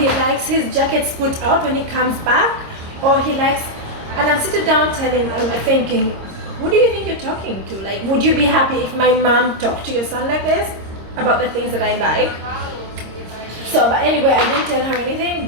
likes his jackets put out when he comes back. Or he likes, and I'm sitting down thinking, who do you think you're talking to? Like, would you be happy if my mom talked to your son like this about the things that I like? So, but anyway, I didn't tell her anything,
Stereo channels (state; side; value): late; left; 26 ms